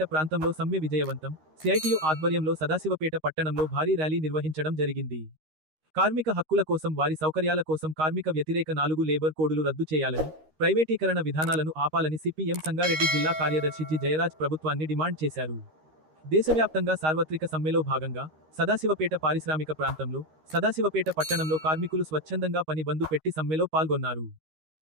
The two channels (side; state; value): left; late; 13 ms